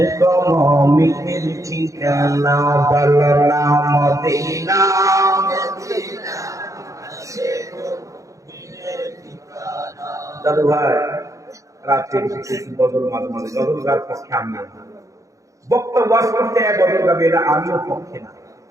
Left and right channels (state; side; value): late; left; 0.16 ms